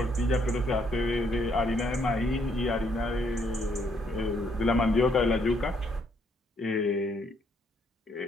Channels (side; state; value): both; normal; correlation 0.70